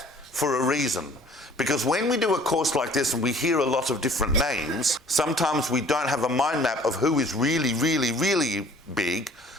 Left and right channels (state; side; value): normal; both; correlation 0.52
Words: for a reason, because when we do a course like this and we hear a lot of different names, sometimes we don't have a mind map of who is really, really, really big